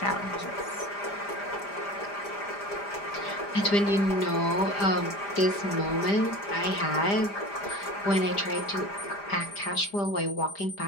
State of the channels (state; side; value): late; right; 5.0 ms